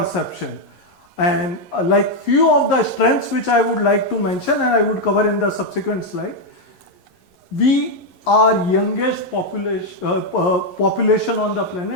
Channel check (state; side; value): late; right; 11 ms